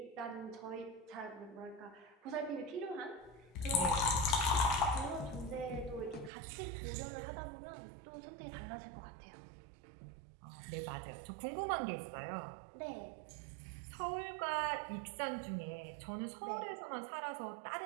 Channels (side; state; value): left; drops out; at 6.3 s